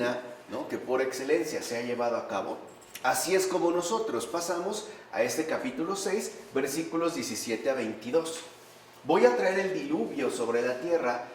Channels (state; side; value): identical; both; correlation 1.00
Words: ¿no?, que por excelencia se ha llevado a cabo. Así es como nosotros pasamos a este capítulo 6, versículos 17 a 22. Voy a traer el diluvio sobre la tierra